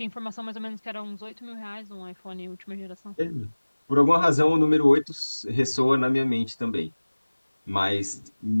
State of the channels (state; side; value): inverted; both; correlation -1.00